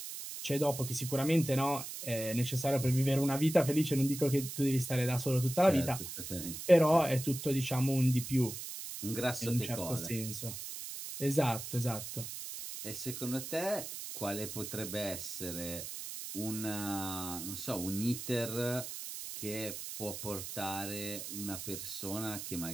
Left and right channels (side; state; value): right; noise; hiss, 8 dB below the sound